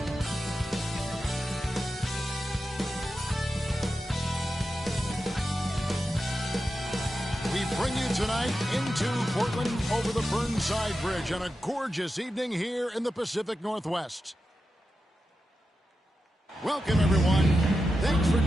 We bring you tonight into Portland over the Burnside Bridge on a gorgeous evening here in the Pacific Northwest. Welcome, everyone. Thanks for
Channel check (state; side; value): normal; both; correlation 0.90